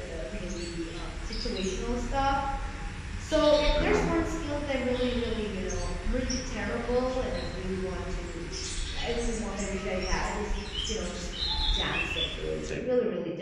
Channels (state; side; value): identical; both; correlation 1.00